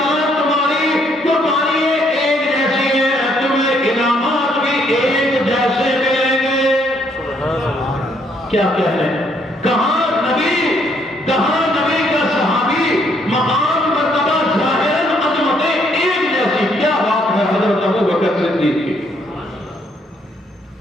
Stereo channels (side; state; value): both; normal; correlation 0.69